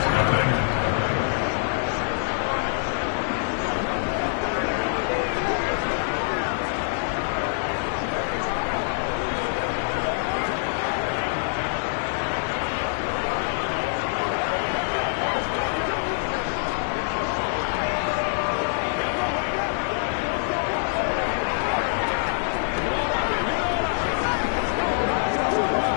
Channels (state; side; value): silent; right; digital silence